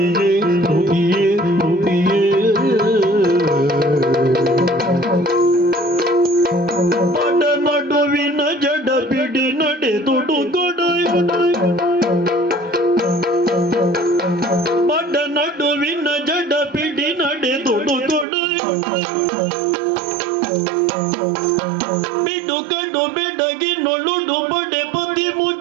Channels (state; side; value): drops out; left; at 18.2 s